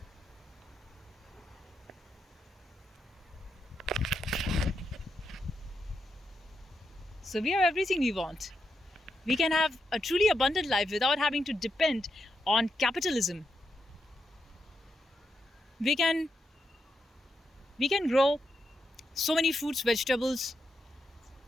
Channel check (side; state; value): both; normal; correlation 0.84